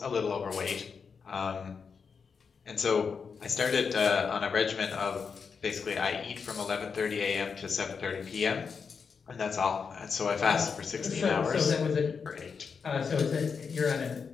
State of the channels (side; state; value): right; quieter; 5.8 dB